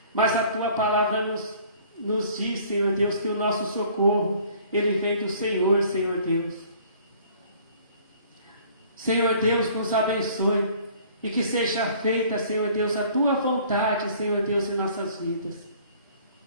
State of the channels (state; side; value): inverted; both; correlation -0.54